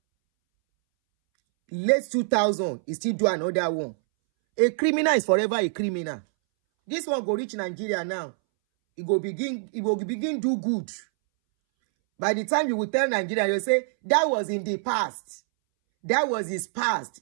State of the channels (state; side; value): silent; left; 61 dB below the other